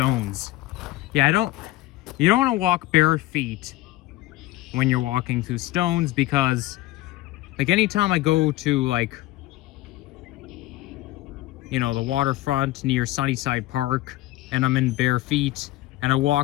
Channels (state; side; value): quieter; right; 17.2 dB